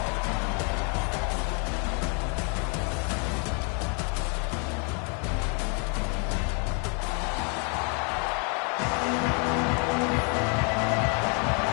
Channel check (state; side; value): quieter; right; 37.2 dB